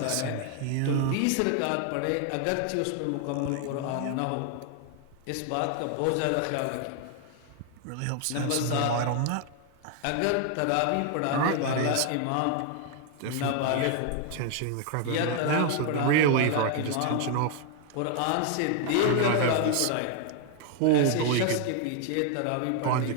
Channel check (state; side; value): different; both; correlation 0.00